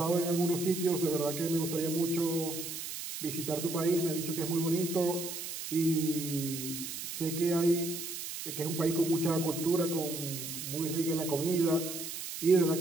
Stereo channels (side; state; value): right; noise; hiss, 7 dB below the sound